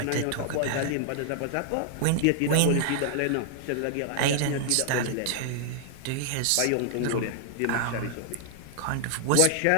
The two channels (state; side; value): different; both; correlation -0.01